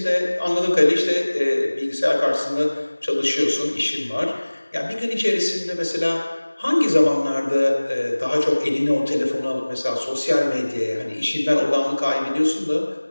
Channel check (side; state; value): both; inverted; correlation -1.00